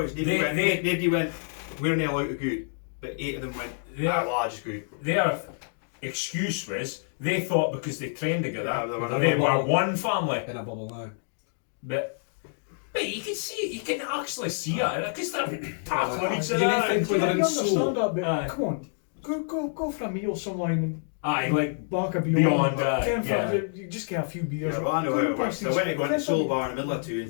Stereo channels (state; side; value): silent; right; digital silence